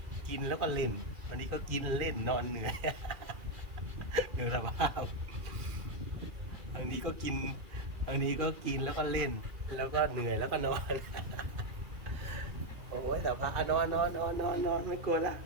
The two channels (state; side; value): late; left; 2.4 ms